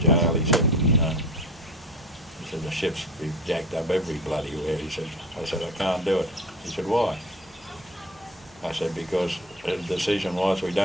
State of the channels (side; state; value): both; normal; correlation 0.38